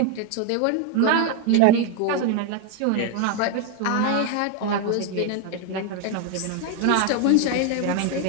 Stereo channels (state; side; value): different; both; correlation 0.01